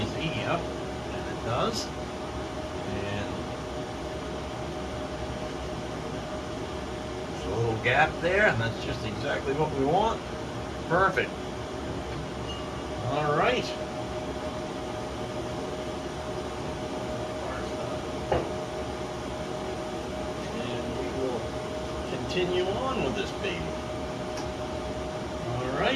yep, and it does. And there's a little gap there, and that's just exactly what we want. Perfect. All right. And we will continue on with this baby. All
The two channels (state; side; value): identical; both; correlation 1.00